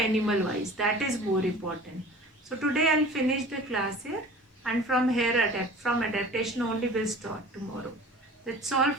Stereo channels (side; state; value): both; normal; correlation 0.43